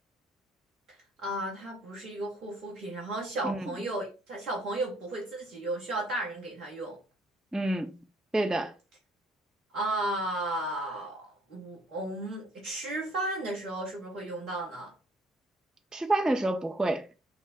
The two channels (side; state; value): both; normal; correlation 0.63